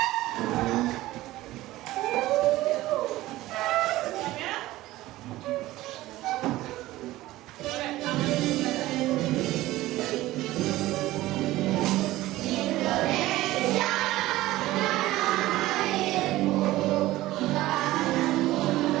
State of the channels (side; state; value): left; quieter; 16.9 dB